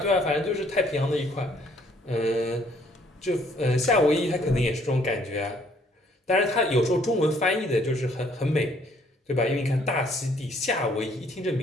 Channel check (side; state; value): both; normal; correlation 0.63